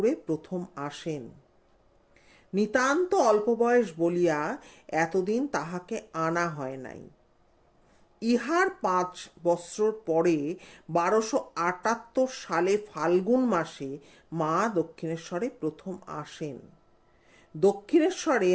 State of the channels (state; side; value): identical; both; correlation 1.00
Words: প্রথম আসেন। নিতান্ত অল্প বয়স বলিয়া এতদিন তাহাকে আনা হয় নাই। ইহার 5 বৎসর পরে 1278 সালে ফাল্গুন মাসে মা দক্ষিণেশ্বরে প্রথম আসেন। দক্ষিণেশ্বরে